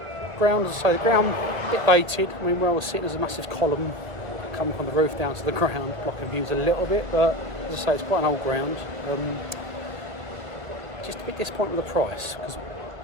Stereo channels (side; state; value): left; late; 2.1 ms